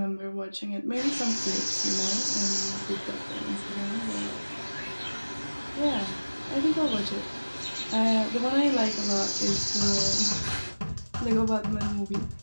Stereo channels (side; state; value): both; inverted; correlation -1.00